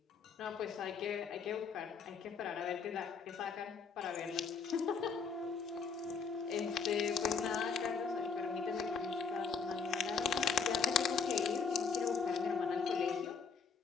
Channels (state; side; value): quieter; right; 5.7 dB